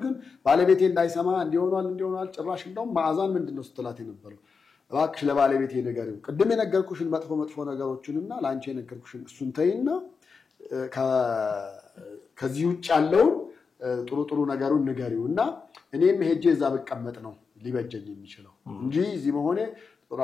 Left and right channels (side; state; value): right; quieter; 5.2 dB